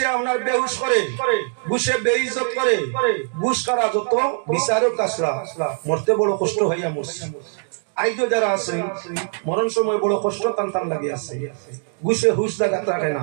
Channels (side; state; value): left; silent; digital silence